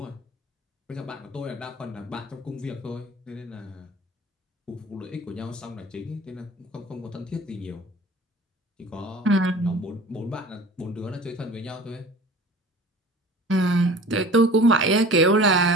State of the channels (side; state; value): both; normal; correlation 0.43